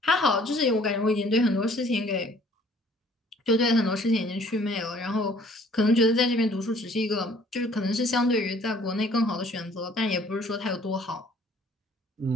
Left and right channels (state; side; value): normal; both; correlation 0.57